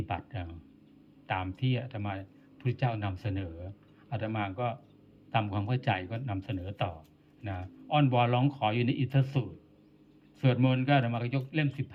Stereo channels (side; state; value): both; identical; correlation 1.00